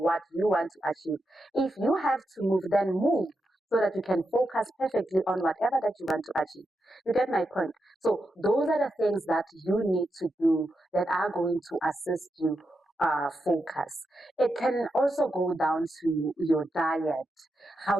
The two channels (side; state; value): both; normal; correlation 0.86